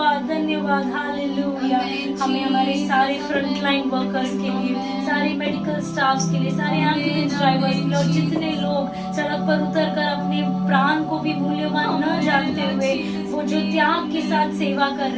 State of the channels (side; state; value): both; identical; correlation 1.00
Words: धन्यवाद। हालेलुया। हमें हमारे सारे फ्रंट लाइन वर्कर्स के लिए, सारे मेडिकल स्टाफ्स के लिए, सारे एम्बुलेंस ड्राइवर्स के लिए, और जितने लोग सड़क पर उतर कर अपने प्राण को भी मूल्यवान न जानते हुए वो जो त्याग के साथ सेवा कर